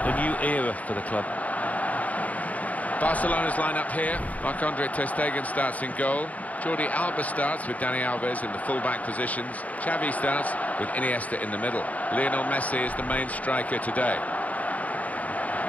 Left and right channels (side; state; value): right; late; 0.072 ms